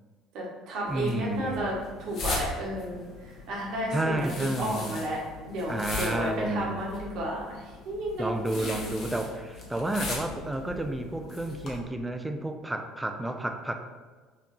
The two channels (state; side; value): normal; both; correlation 0.68